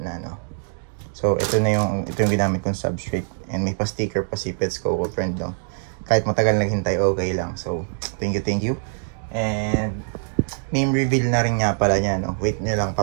na, no? So ito yung ginamit kong substrate. And may pa-sticker pa si Pets Coco Friend, no? Kahit matagal naghintay, okay lang. So thank you. And name reveal na rin nga pala niya, no? Wait nyo lang,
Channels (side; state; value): left; silent; digital silence